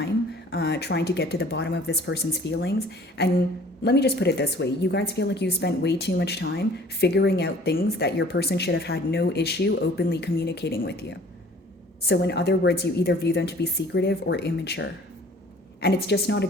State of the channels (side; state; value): both; normal; correlation 0.52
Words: trying to get to the bottom of this person's feelings. And let me just put it this way. You guys feel like you spent way too much time figuring out things that your person should have had no issue openly communicating with you. So in other words, you either view them to be secretive or immature. And it's just not a